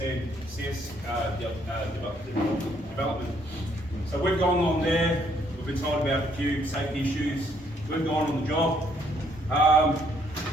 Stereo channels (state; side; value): normal; both; correlation 0.68